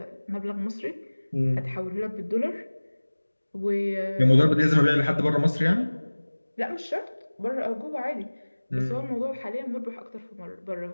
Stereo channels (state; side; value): inverted; both; correlation -1.00